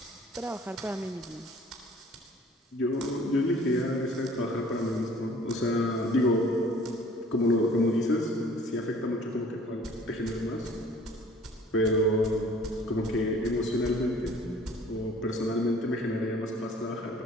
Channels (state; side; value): normal; both; correlation 0.52